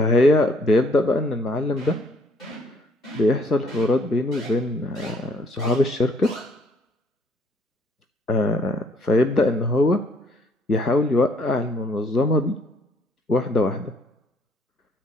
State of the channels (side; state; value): both; normal; correlation 0.63